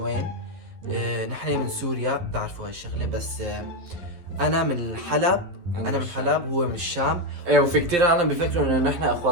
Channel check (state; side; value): late; left; 12 ms